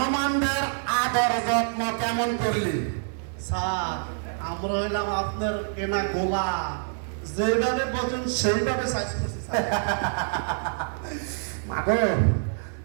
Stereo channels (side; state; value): left; silent; 61 dB below the other